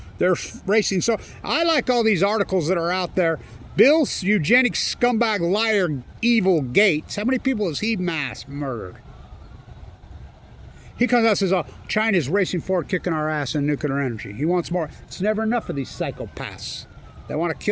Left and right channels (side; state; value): both; identical; correlation 1.00